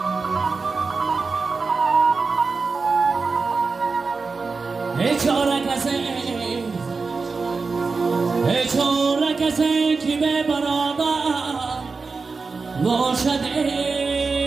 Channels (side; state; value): left; quieter; 4.4 dB